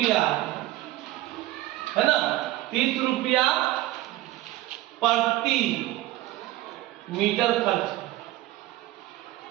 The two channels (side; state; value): left; quieter; 16.5 dB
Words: है ना, 30 रुपया प्रति मीटर